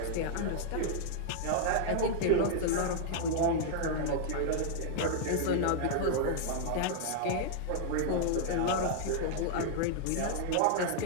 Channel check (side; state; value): both; different; correlation -0.01